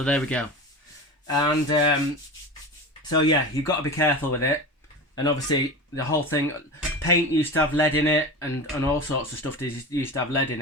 there we go. And so yeah, you've got to be careful with it. And obviously the whole thing, paint used to have lead in it, and all sorts of stuff used to have lead in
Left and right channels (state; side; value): normal; both; correlation 0.29